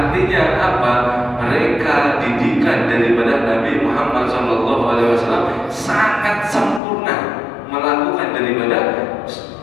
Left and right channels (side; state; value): right; drops out; at 6.8 s